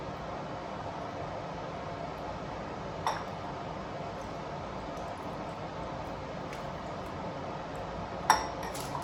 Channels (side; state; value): both; identical; correlation 1.00